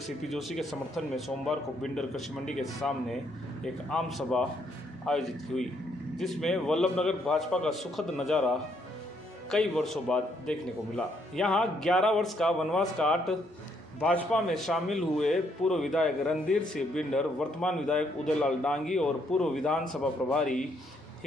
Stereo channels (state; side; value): normal; both; correlation 0.72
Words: सीपी जोशी के समर्थन में सोमवार को बिंडर कृषि मंडी के सामने एक आम सभा आयोजित हुई, जिसमें वल्लभनगर भाजपा का सुखद नज़ारा कई वर्षों बाद देखने को मिला। यहां 11 वर्ष का वनवास काट भाजपा में शामिल हुए पूर्व विधायक रणधीर सिंह बिंडर, वर्तमान विधायक उदयलाल डांगी और पूर्व विधानसभा प्रभारी